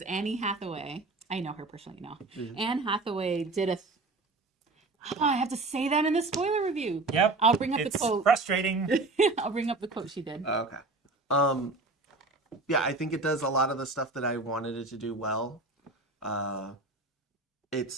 Annie Hathaway, I know her personally now. Mhm. Anne Hathaway did I have to say that in the spoiler review. Yep. I'll bring up It's the quote. frustrating. I'll bring up the quote she did. Okay. Yeah, I think it does a lot of the stuff that I wanted it to do well.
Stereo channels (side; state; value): left; quieter; 3.3 dB